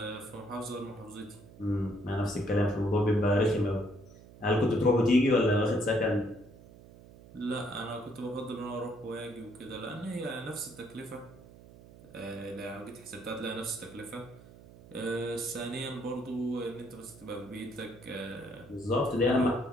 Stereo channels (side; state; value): right; noise; hum, 20 dB below the sound